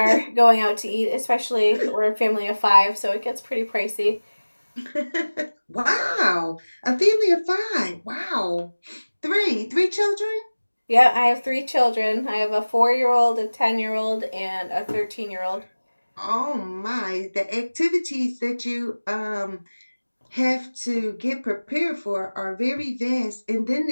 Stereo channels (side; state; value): both; inverted; correlation -1.00